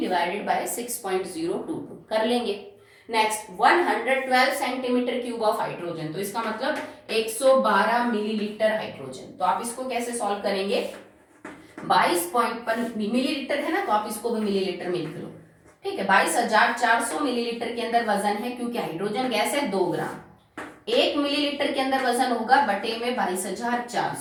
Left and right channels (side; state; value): both; identical; correlation 1.00